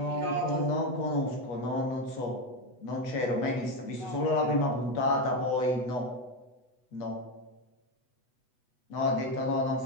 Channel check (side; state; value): right; late; 8.1 ms